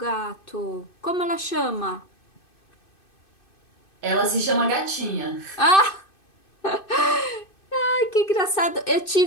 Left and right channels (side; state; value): right; late; 2.6 ms